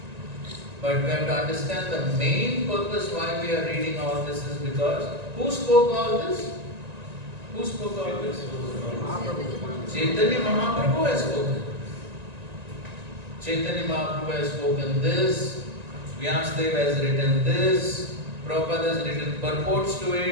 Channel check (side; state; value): left; late; 1.9 ms